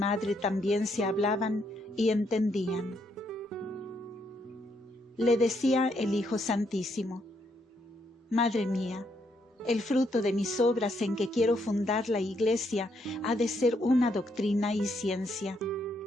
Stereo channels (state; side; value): normal; both; correlation 0.75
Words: también se hablaban y entendían. Le decía el Hijo Santísimo: Madre mía, el fruto de mis obras en que quiero fundar la Iglesia ha de ser una doctrina y ciencia,